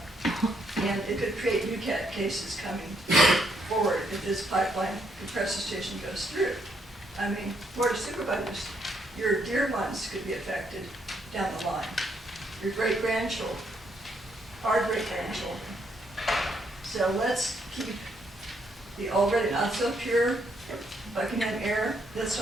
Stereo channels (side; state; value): both; normal; correlation 0.74